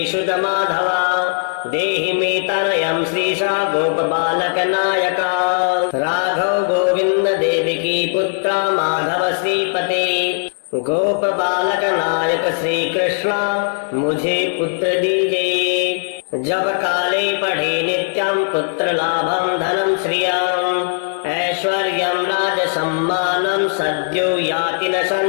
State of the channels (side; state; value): right; silent; 65 dB below the other